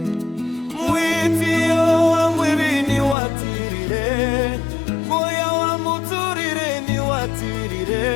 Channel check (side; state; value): right; drops out; at 3.2 s